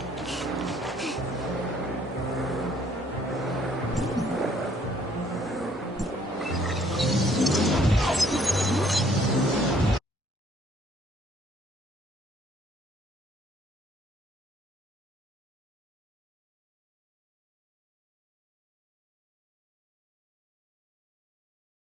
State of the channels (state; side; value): normal; both; correlation 0.62